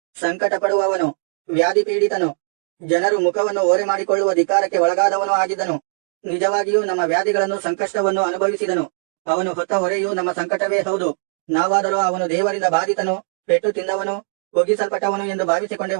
ಸಂಕಟ ಪಡುವವನು, ವ್ಯಾಧಿ ಪೀಡಿತನು, ಜನರು ಮುಖವನ್ನು ಓರೆ ಮಾಡಿಕೊಳ್ಳುವ ಧಿಕ್ಕಾರಕ್ಕೆ ಒಳಗಾದವನು ಆಗಿದ್ದನು. ನಿಜವಾಗಿಯೂ ನಮ್ಮ ವ್ಯಾಧಿಗಳನ್ನು ಸಂಕಷ್ಟವನ್ನು ಅನುಭವಿಸಿದನು. ಅವನು ಹೊತ್ತ ಹೊರೆಯು ನಮ್ಮ ಸಂಕಟವೇ ಹೌದು. ನಾವಾದರೂ ಅವನು ದೇವರಿಂದ ಬಾಧಿತನು, ಪೆಟ್ಟು ತಿಂದವನು, ಒಗ್ಗಿಸಲ್ಪಟ್ಟವನು ಎಂದು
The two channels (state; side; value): silent; left; digital silence